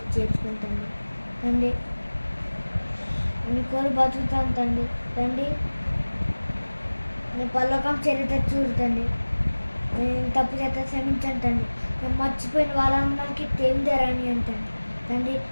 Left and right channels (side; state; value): both; inverted; correlation -1.00